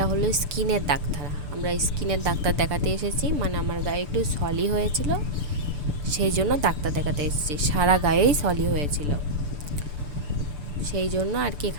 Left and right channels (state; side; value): late; left; 6.8 ms